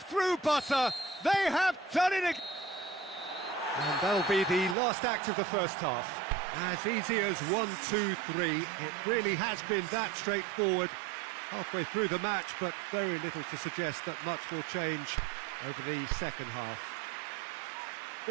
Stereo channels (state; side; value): drops out; left; at 4.8 s